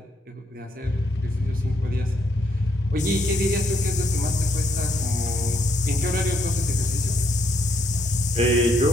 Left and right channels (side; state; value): both; normal; correlation 0.74